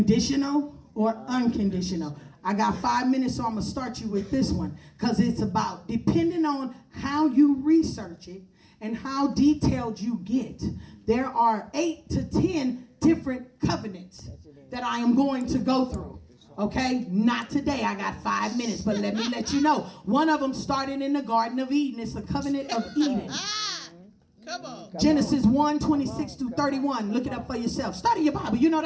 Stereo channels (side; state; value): both; identical; correlation 1.00